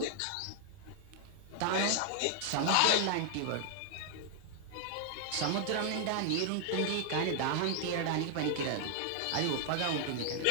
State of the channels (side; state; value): both; different; correlation 0.00